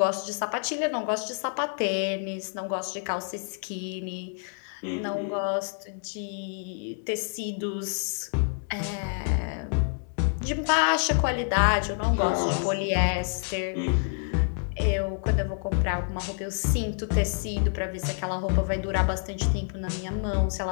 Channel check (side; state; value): right; silent; 56 dB below the other